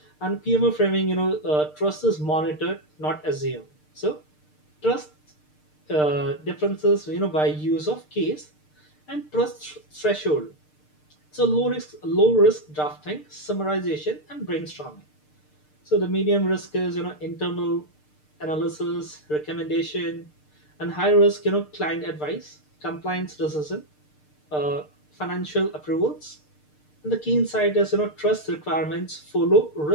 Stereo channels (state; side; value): late; right; 6.6 ms